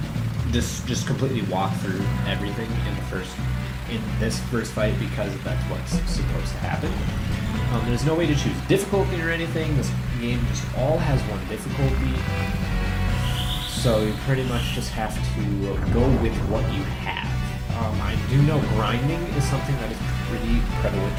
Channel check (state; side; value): identical; both; correlation 1.00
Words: just completely walk through everything in this first fight because that's what's supposed to happen. There's no way to choose difficulty or anything. This game just all has one difficulty. So you pretty much just have to go with what you have. I do know grinding is something that is pretty prevalent